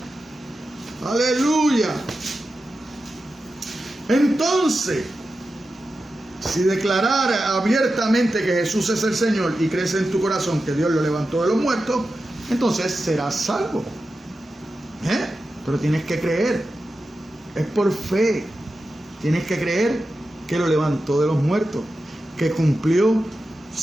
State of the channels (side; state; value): both; normal; correlation 0.92